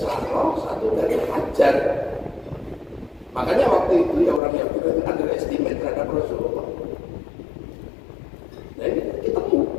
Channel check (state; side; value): drops out; right; at 4.4 s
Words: satu dari Hajar. Makanya waktu itu ya orang yang underestimate terhadap Rasulullah. Nah ini ketemu